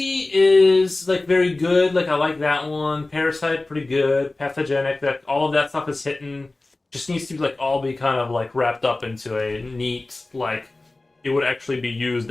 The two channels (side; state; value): right; quieter; 3.0 dB